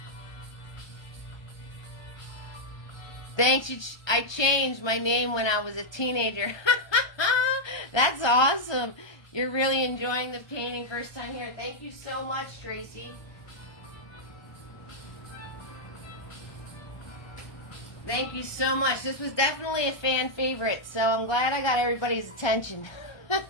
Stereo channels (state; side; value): late; right; 1.2 ms